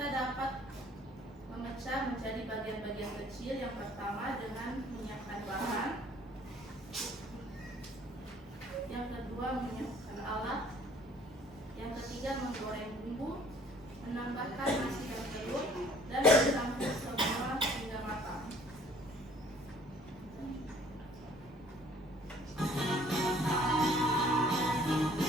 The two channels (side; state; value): both; normal; correlation 0.56